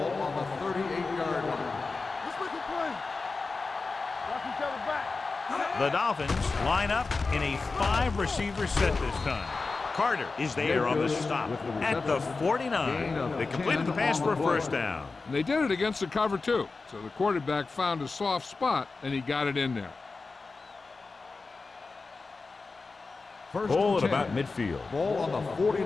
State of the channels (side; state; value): right; quieter; 4.0 dB